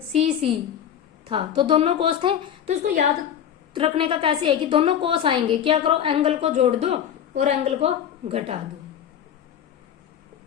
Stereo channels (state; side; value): quieter; right; 9.4 dB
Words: सी सी था तो दोनों कोस थे, तो इसको याद रखने का कैसे है कि दोनों कोस आएंगे, क्या करो एंगल को जोड़ दो और एंगल को घटा दो,